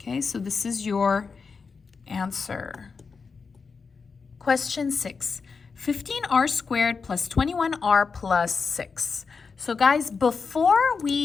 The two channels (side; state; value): right; quieter; 5.1 dB